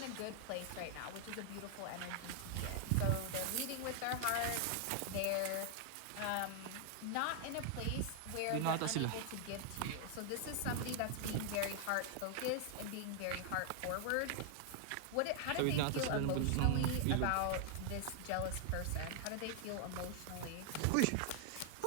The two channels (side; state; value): both; different; correlation 0.00